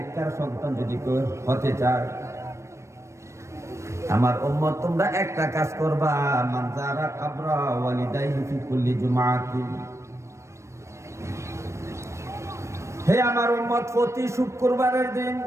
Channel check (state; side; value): late; left; 0.14 ms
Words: সন্তান যদি কেউ হতে চায়, আমার উম্মত তোমরা একটা কাজ করবা, মান যারা কাবরা ওয়ালিদাইহি ফি কুল্লি জুমআতি। হে আমার উম্মত, প্রতি শুক্রবারের দিন